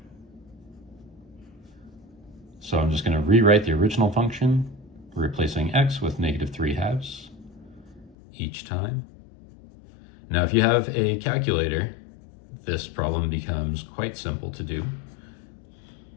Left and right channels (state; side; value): drops out; right; at 8.2 s